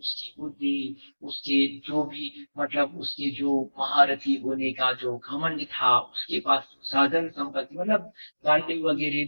बुद्धि, उसके जो भी मतलब उसके जो महारथी होने का जो घमंड था, उसके पास साधन संपत्ति मतलब गाड़ी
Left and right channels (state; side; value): inverted; both; correlation -1.00